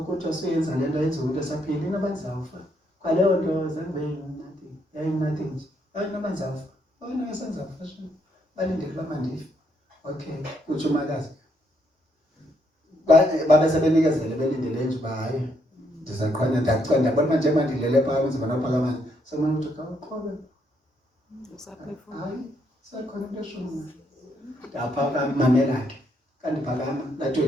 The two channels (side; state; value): both; normal; correlation 0.74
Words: kodwa suyenza lento yenza umuntu esaphila inabazawufa kwaleyo nto zange nothing nje ayinabazawufa wena yasenzafa sho balindele uba mandife okay kutsho umakazi babe sebenikezele belindele nje uba hayi ndizaqhanya ndiyabona manje mandilele phaa kwenzima naphakamane semane ukuthi kawuqhobe hayi sekhona into eshona ndaphakama mamela ke kandiphakama